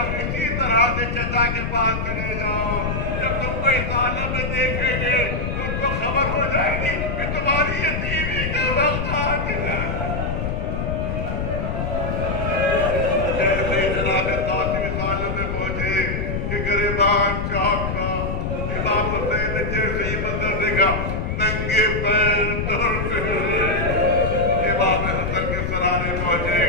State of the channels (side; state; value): left; noise; rumble, 2 dB below the sound